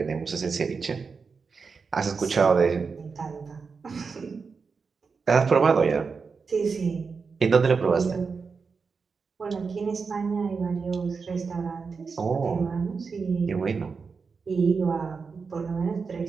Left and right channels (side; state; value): left; quieter; 5.1 dB